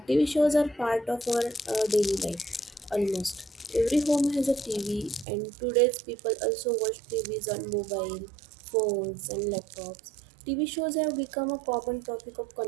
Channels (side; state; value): left; drops out; at 5.2 s